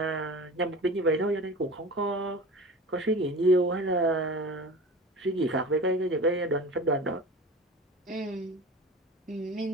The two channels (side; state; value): both; normal; correlation 0.35